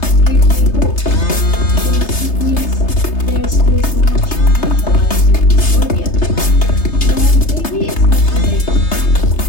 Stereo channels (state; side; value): late; right; 3.3 ms